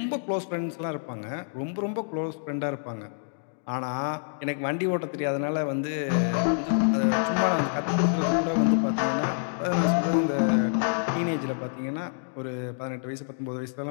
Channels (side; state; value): right; silent; digital silence